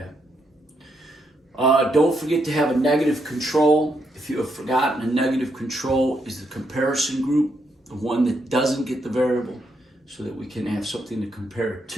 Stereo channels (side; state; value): both; normal; correlation 0.78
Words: Don't forget to have a negative control. If you have forgotten, a negative control is the comparison group, the one that doesn't get the variable, so that we can have something to compare it